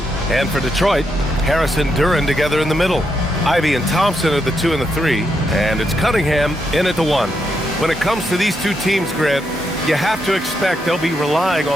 And for Detroit, Harris and Duren together in the middle. Ivy and Thompson are the 2 and the 3, and it's Cunningham in at the 1. When it comes to these two teams, Grant, you have to expect they'll be relying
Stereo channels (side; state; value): both; normal; correlation 0.81